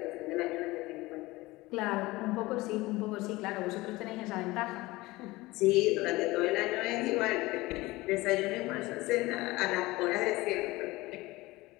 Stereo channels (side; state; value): right; quieter; 20.3 dB